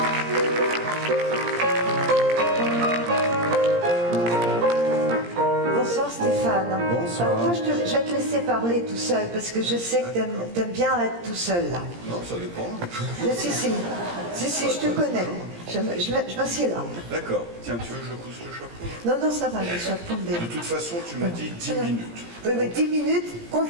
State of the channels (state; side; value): late; left; 17 ms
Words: Bonsoir Stéphane. Bonsoir. Alors, moi je vais te laisser parler tout seul parce que je sais que t'aimes bien être tout seul là. Non, ça dépend. Si, je te connais. Je m'assieds là. D'accord. Tiens, tu veux que je pousse le chapeau? Non, ça va, le chapeau. De toute façon, tu m'as dit 10 minutes. Oui, mais 10 minutes,